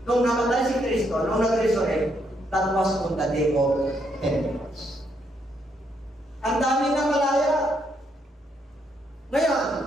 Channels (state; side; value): normal; both; correlation 0.75